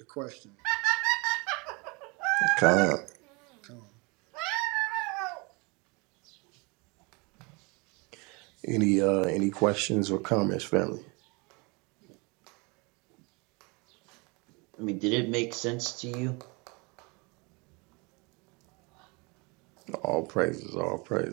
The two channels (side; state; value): left; quieter; 29.0 dB